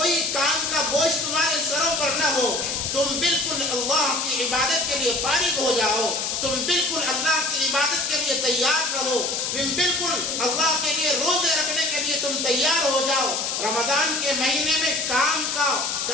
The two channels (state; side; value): noise; left; hiss, 1 dB below the sound